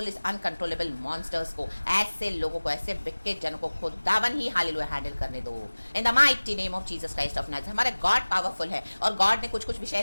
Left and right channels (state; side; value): inverted; both; correlation -1.00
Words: इस अनकंट्रोलेबल मॉन्स्टर्स को, ऐसे लोगों को, ऐसे विकेट जनों को खुदावन ही हालेलुया हैंडल करने दो, इन the mighty name of Jesus Christ of Nazareth. हमारे गॉड पावरफुल है, और गॉड ने कुछ कुछ